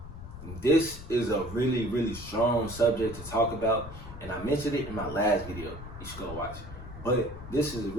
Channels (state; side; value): noise; left; rumble, 13 dB below the sound